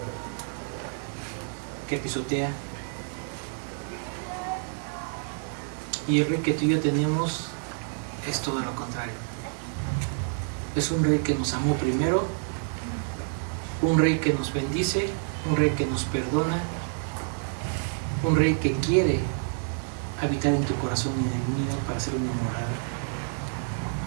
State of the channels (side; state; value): left; silent; 59 dB below the other